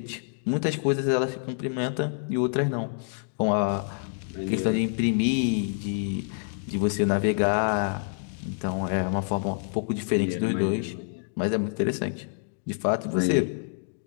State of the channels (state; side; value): silent; right; digital silence